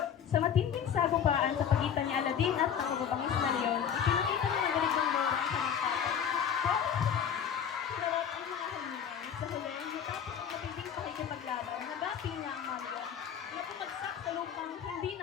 Sa matinding sagupaan sa pagitan ni Aladdin at ng mababangis na leon, ipinakita ni Madalig ng Moro ang kanyang tatay. Sinarap ang mga halingan. Sa huli, matapos ang matinding pakikipaglaban, nagapi niya ang mga leon na pumagsak sa lupang hindi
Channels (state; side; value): quieter; right; 8.1 dB